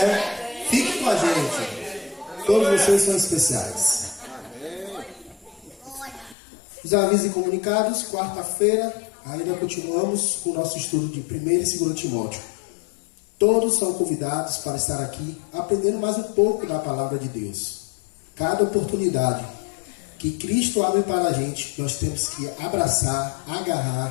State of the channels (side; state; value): right; drops out; at 6.4 s